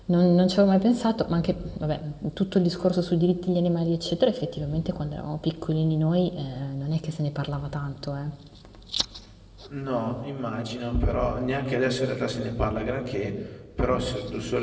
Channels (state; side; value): identical; both; correlation 1.00